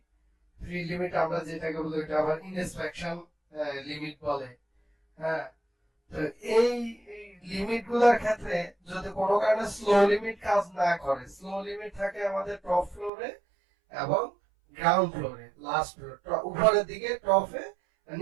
লিমিট আমরা যেটাকে বলি এটা আবার ইনস্পেকশন লিমিট বলে। হ্যাঁ, তো এই লিমিট গুলার ক্ষেত্রে যদি কোনো কারণে স্লো লিমিট কাজ না করে, স্লো লিমিট থাকে আমাদের টপ ফ্লোরে এবং গ্রাউন্ড ফ্লোরে, লাস্ট ফ্লোর উপরের দিকে টপে,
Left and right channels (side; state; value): left; drops out; at 13.1 s